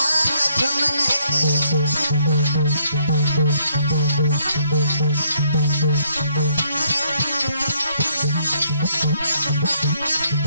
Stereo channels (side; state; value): both; inverted; correlation -0.69